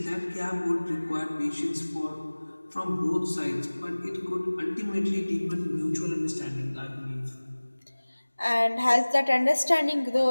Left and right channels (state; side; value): inverted; both; correlation -1.00